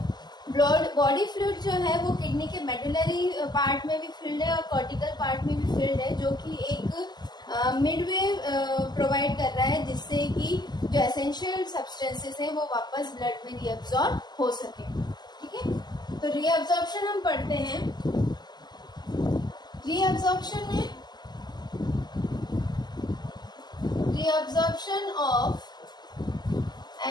बॉडी फ्लूइड जो है वो किडनी के मेडुलरी पार्ट में भी फिल्ड है और कॉर्टिकल पार्ट में भी फिल्ड है, जो कि एक मिडवे प्रोवाइड कर रहा है जिससे कि जो एसेंशियल सब्सटेंसेस हैं वो वापस ब्लड में रीअब्सॉर्ब हो सके। ठीक है, तो रीअब्सॉर्प्शन हम पढ़ते हैं। रीअब्सॉर्प्शन में reabsorption of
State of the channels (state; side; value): late; right; 0.21 ms